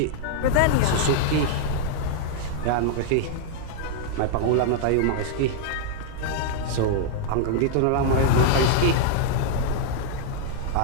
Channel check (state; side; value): different; both; correlation -0.01